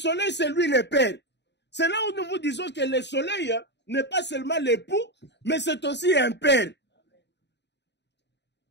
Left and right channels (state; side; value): late; right; 0.50 ms